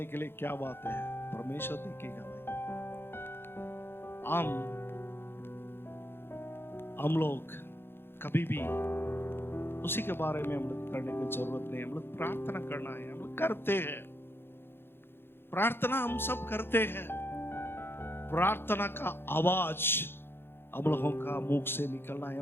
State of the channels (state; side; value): late; right; 0.11 ms